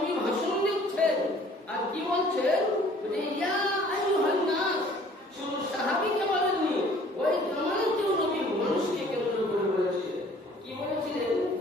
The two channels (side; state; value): both; normal; correlation 0.54